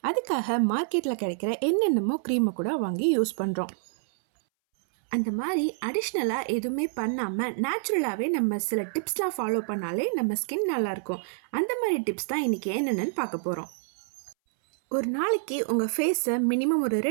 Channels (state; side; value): silent; left; 60 dB below the other